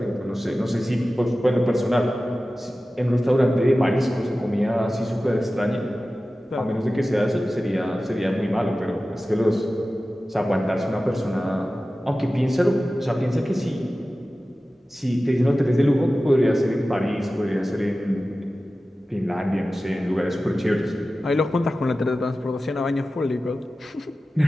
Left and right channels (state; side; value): normal; both; correlation 0.95